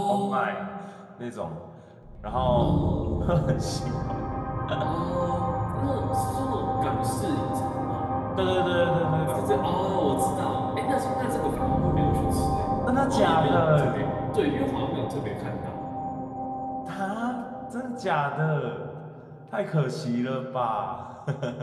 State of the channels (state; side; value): identical; both; correlation 1.00